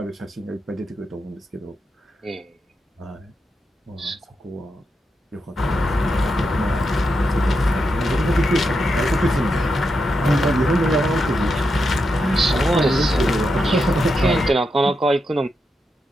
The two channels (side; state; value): both; normal; correlation 0.85